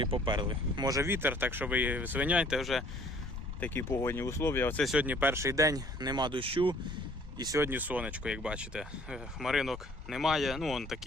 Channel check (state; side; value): normal; both; correlation 0.57